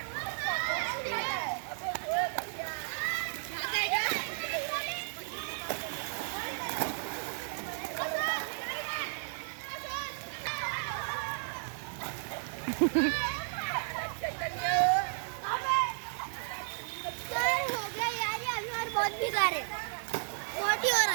बहुत बिगाड़ है, बहुत ही हो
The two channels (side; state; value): left; silent; digital silence